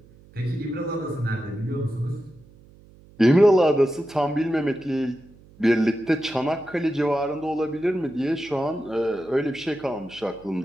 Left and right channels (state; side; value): noise; right; hum, 25 dB below the sound